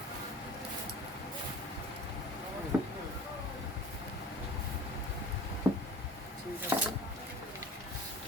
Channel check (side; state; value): both; normal; correlation 0.41